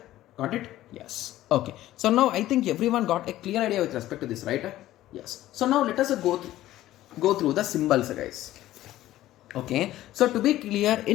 Got it? Yes. Okay. So now I think everyone got a clear idea with respect to this, right? Yes. So now let us go through the symbols, guys. Okay, so to be clear,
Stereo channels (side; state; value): right; quieter; 14.6 dB